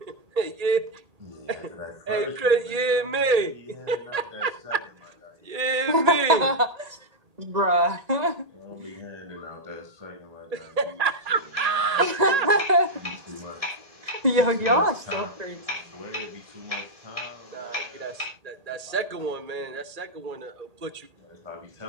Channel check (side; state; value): left; late; 1.8 ms